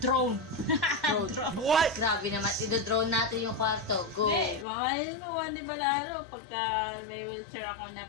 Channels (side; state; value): right; drops out; at 4.7 s